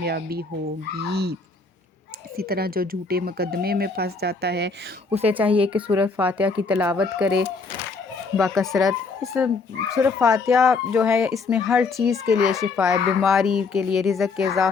ہوگی۔ اسی طرح جو جھوٹے مقدمے میں پھنس جاتا ہے اسے چاہیے کہ سورہ فاتحہ کی تلاوت کرے باکثرت۔ اس سورہ فاتحہ جو ہے اس میں ہر چیز کے لیے شفا ہے، بیماری کے لیے، رزق کے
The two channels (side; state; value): right; quieter; 4.3 dB